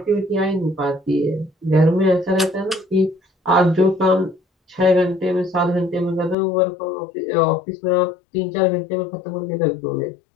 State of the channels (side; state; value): right; drops out; at 6.4 s